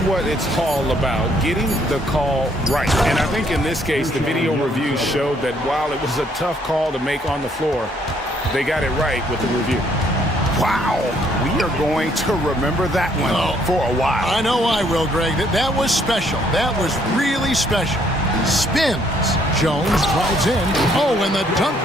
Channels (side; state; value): both; normal; correlation 0.67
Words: it's all about, getting the call right. And I think in this case, the video review showed that while it was a tough call to make on the floor, they got it right with the review. Wow, we are going to remember that one for a while. I know I will, Greg. That was special. That was really special. Spins. Jones drives in. Oh, and the dunk